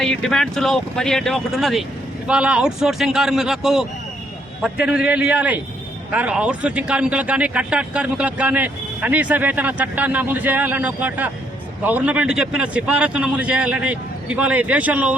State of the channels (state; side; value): normal; both; correlation 0.71